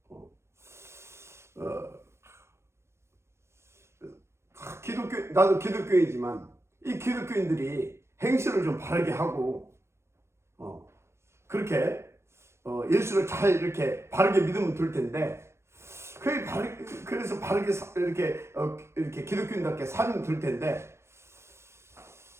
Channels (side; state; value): left; late; 0.13 ms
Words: 나도 기독교이지만 이 기독교인들이 행실을 좀 바르게 하고, 그렇게 예수를 잘 이렇게 바르게 믿으면 될 텐데, 그래서 바르게 이렇게 기독교인답게 살면 될 텐데,